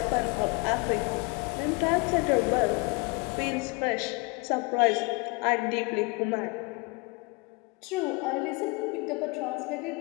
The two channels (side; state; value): right; quieter; 28.2 dB